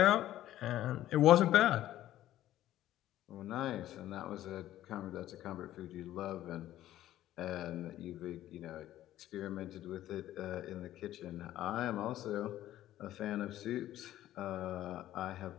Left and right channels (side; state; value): right; quieter; 13.5 dB